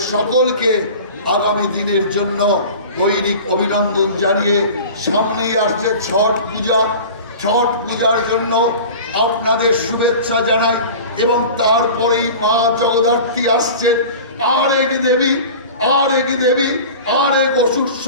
সকলকে আগামী দিনের জন্য দৈনিক অভিনন্দন জানিয়ে সামনেই আসছে ছট পূজা। ছট পূজার জন্য আপনাদের শুভেচ্ছা জানাই, এবং তারপরেই মা জগদ্ধাত্রী আসছেন, আর এক দেবী, আর এক দেবী, আর এক অসুর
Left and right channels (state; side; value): inverted; both; correlation -0.38